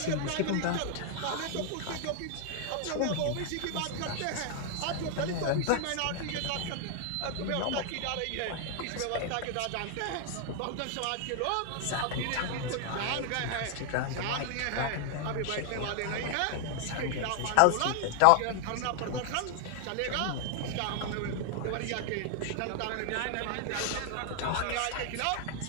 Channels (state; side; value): different; both; correlation 0.00